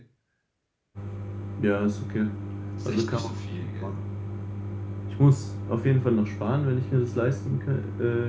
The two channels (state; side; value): identical; both; correlation 1.00